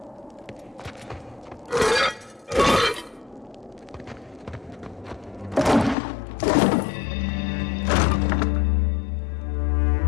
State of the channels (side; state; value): right; drops out; at 6.0 s